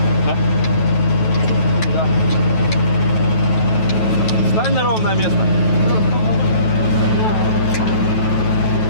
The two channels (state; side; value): late; right; 9.2 ms